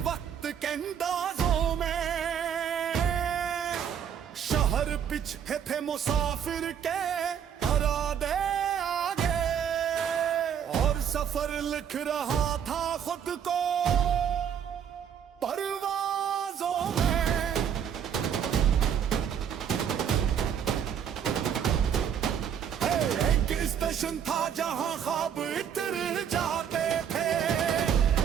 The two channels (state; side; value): quieter; left; 8.4 dB